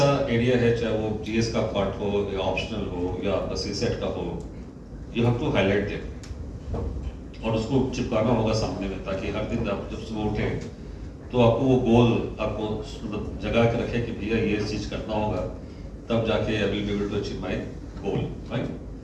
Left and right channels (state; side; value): identical; both; correlation 1.00